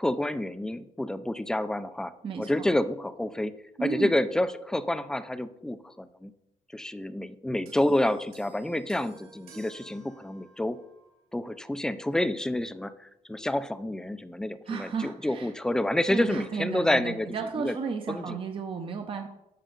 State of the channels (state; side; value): normal; both; correlation 0.92